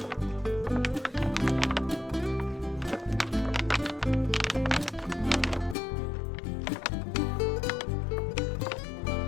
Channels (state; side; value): drops out; right; at 5.8 s